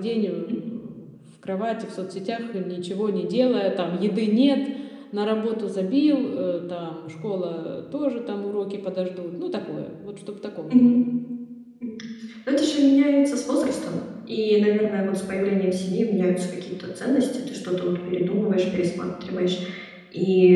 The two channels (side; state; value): both; identical; correlation 1.00